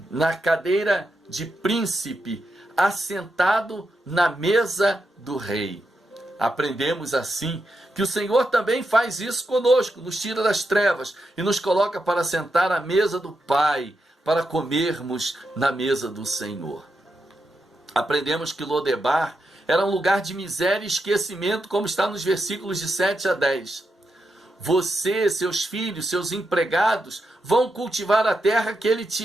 na cadeira de príncipe, assentado na mesa do rei. Aprendemos assim que o Senhor também faz isso conosco, nos tira das trevas e nos coloca para sentar à mesa do Pai, para comermos na mesa do Senhor. Aprendemos que Lodebar era um lugar de miséria e esquecimento, como está nos versículos de 7 a 10. Você, seus filhos, seus empregados vão cultivar a terra que ele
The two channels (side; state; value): both; normal; correlation 0.85